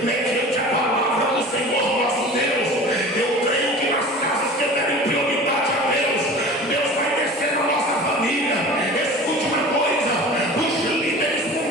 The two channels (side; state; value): both; normal; correlation 0.39